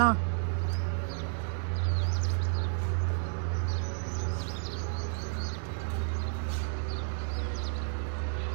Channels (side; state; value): left; silent; 57 dB below the other